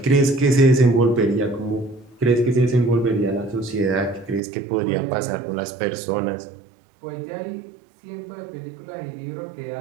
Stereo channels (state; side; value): drops out; left; at 4.4 s